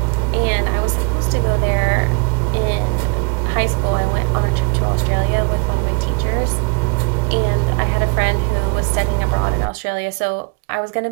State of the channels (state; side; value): quieter; left; 35.7 dB